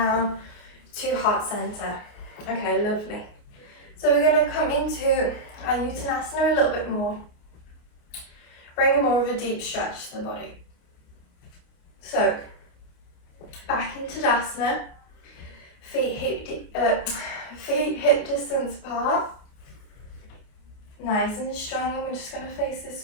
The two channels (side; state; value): right; late; 29 ms